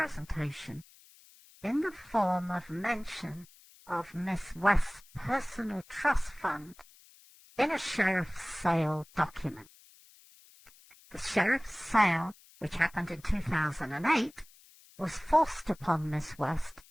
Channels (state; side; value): noise; left; hiss, 25 dB below the sound